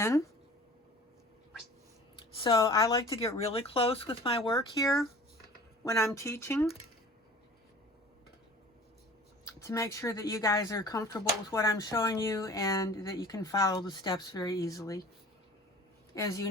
So I like to get really close with my work here when I'm teaching to make sure that you guys are comfortable with what I'm showing you and that you can follow the steps very easily. As you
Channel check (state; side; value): normal; both; correlation 0.44